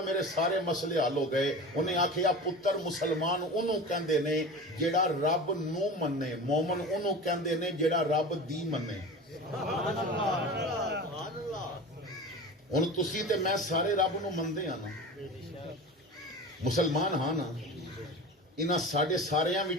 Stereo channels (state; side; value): normal; both; correlation 0.32